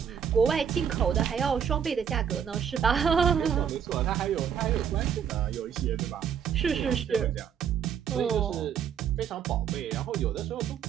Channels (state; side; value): quieter; left; 8.1 dB